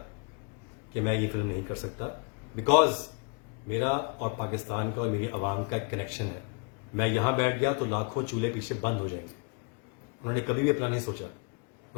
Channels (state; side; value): quieter; right; 34.7 dB